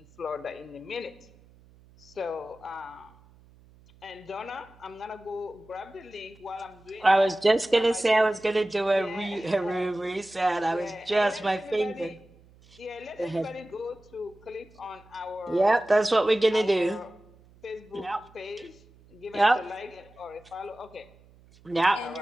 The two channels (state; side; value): noise; right; hum, 27 dB below the sound